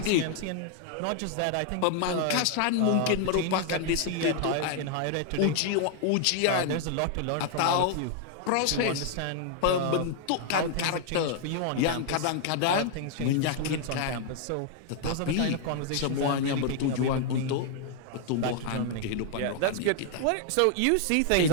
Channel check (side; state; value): both; different; correlation 0.00